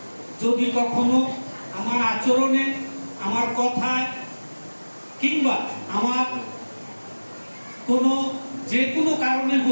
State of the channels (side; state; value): both; inverted; correlation -1.00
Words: যদি কখনো আমার আচরণে, আমার কথায় কিংবা আমার কোনো যে কোনো কারণে